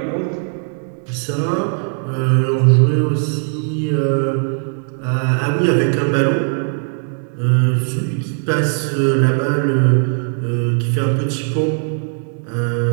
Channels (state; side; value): silent; left; 60 dB below the other